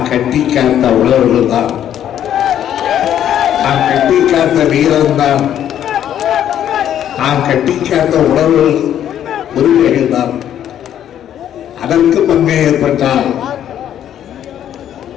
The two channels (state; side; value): quieter; right; 10.5 dB